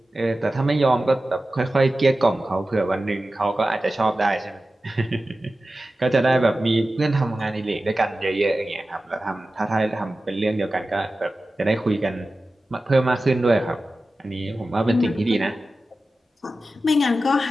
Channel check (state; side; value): normal; both; correlation 0.94